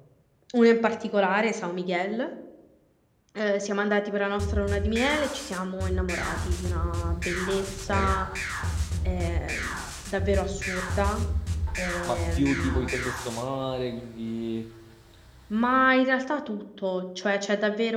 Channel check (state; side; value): identical; both; correlation 1.00